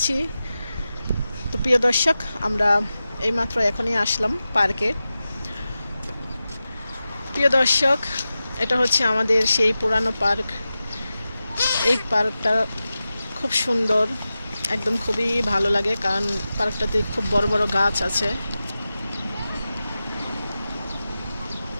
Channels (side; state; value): both; inverted; correlation -0.93